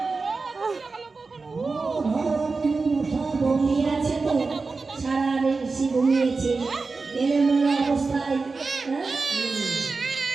ঘুমিয়েছে তো সারা বেশি ঘুমিয়েছে এলোমেলো অবস্থায়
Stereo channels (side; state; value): left; quieter; 4.1 dB